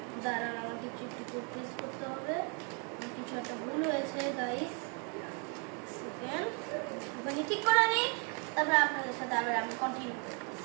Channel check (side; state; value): left; quieter; 37.4 dB